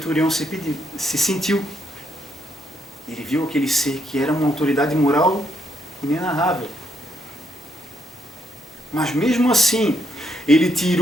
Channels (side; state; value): both; normal; correlation 0.75